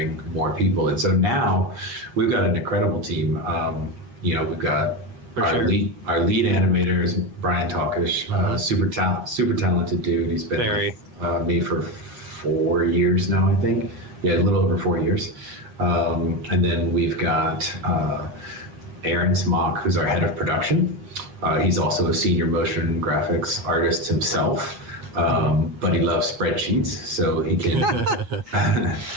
more people. And so now we've got an incredible team. We've got our lead animator is Brian Talkish, super talented dude. He's been with me for 4 years now, I think. Yeah, a little over 4 years. And then we've got Aaron Smock, who's our head of production. He's also a senior motion graphics artist himself. But he loves spreadsheets, so he can.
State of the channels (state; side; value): late; left; 8.3 ms